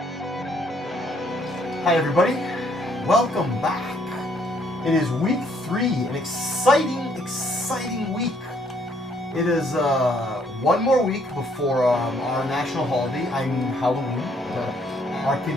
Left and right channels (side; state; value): both; normal; correlation 0.67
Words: Hi everybody, welcome back. It is week 3, an exciting week. It is one more week before our national holiday, I mean Halloween. Our